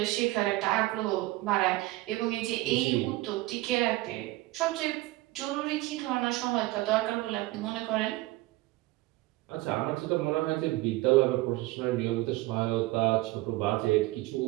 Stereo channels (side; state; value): left; quieter; 19.4 dB